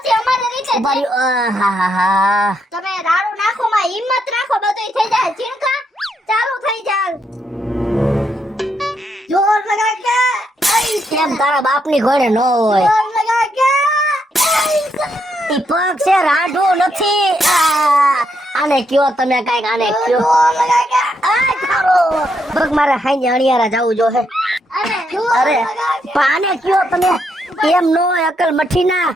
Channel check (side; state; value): both; normal; correlation 0.78